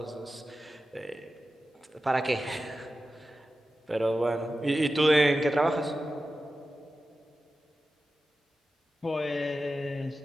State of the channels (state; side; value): normal; both; correlation 0.93